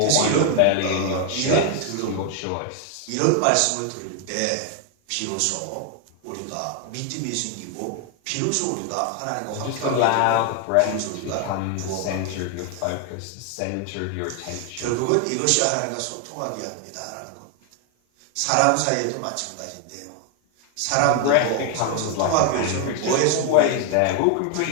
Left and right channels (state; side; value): different; both; correlation 0.00